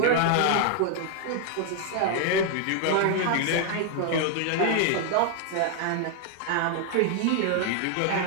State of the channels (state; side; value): different; both; correlation 0.00